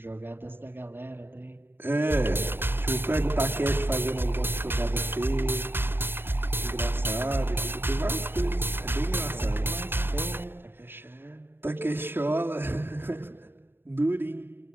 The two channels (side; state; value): left; late; 0.10 ms